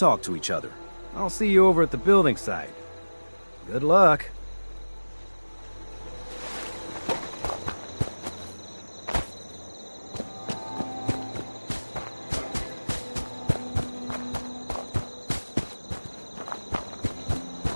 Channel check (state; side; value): inverted; both; correlation -1.00